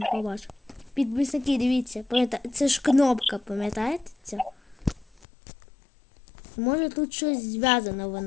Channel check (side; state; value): right; drops out; at 5.2 s